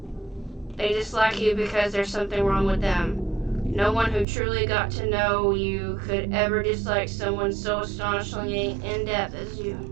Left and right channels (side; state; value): left; drops out; at 4.2 s